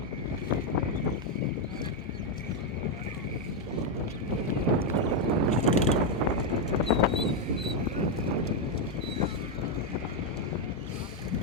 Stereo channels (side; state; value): both; normal; correlation 0.03